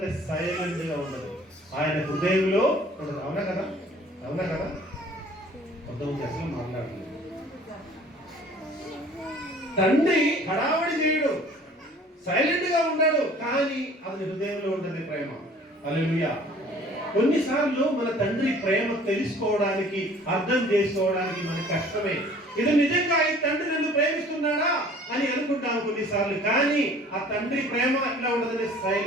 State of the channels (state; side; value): normal; both; correlation 0.51